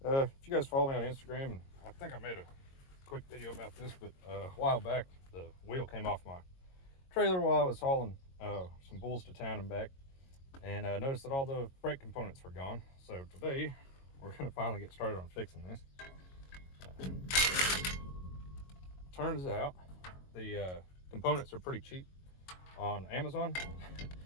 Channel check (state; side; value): late; right; 22 ms